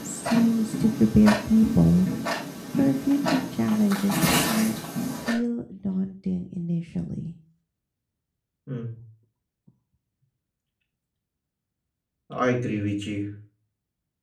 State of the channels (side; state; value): both; identical; correlation 1.00